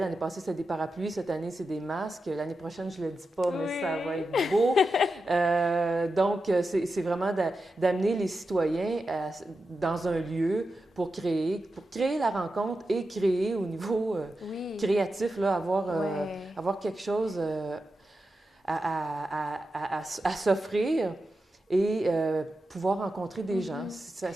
passée, c'était des parapluies. Cette année, c'est des masques. L'année prochaine, je ne le dis pas, mais ça va être beau. Donc, c'est vraiment d'amener les citoyens dans un lieu pour créer la rencontre et créer au niveau créatif, là, avoir quelque chose à s'offrir et pouvoir rencontrer des gens.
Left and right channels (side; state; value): both; normal; correlation 0.90